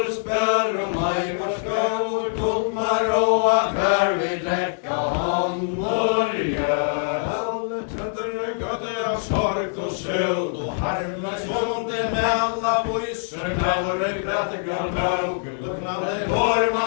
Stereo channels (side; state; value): right; silent; digital silence